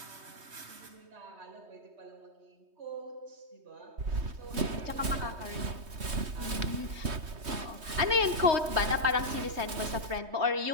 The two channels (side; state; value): left; late; 3.2 ms